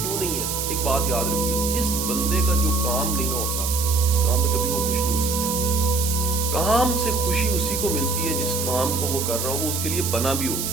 नहीं है? एक बात याद रखिए, जिस बंदे का जो काम नहीं ना होता उस काम में कभी वो खुश नहीं हो सकता। काम से खुशी उसी को मिलती है जिस काम को वो कर रहा हो वो उसके लिए बना भी हो।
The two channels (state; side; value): noise; right; hiss, 3 dB below the sound